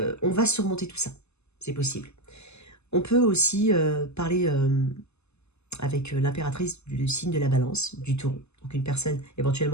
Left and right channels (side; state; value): right; late; 0.80 ms